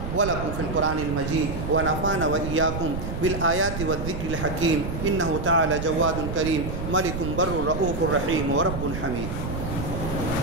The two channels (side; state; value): right; noise; rumble, 5 dB below the sound